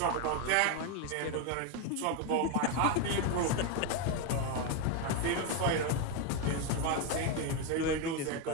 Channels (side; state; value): both; different; correlation 0.02